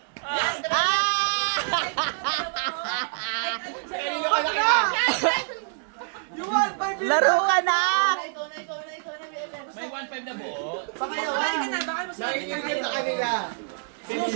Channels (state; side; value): silent; left; digital silence